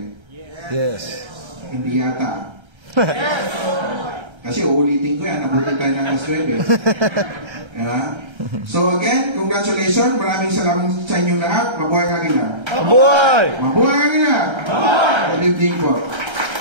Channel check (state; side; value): late; left; 1.3 ms